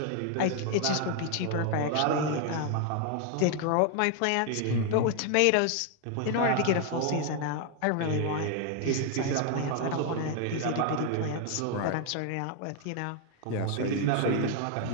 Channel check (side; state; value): both; different; correlation 0.00